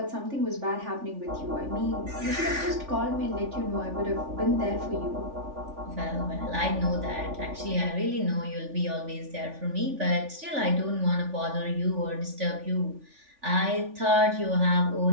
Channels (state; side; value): late; left; 3.4 ms